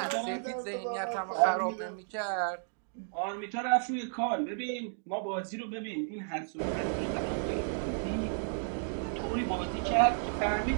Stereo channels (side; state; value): left; silent; digital silence